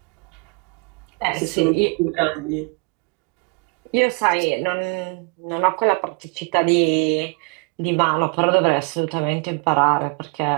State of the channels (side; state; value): left; quieter; 32.0 dB